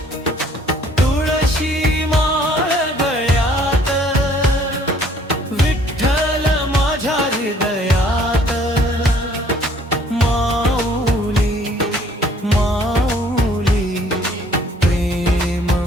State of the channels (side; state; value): both; normal; correlation 0.59